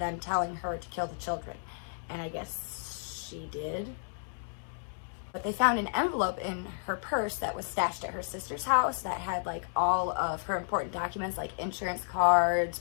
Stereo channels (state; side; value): silent; right; digital silence